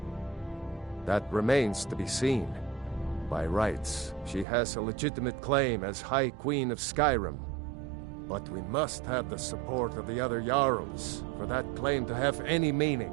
That remains to be seen. By rights, she has a legitimate claim as High Queen of Skyrim. But we must have the support of the other Jarls for that claim to have any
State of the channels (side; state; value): left; drops out; at 4.5 s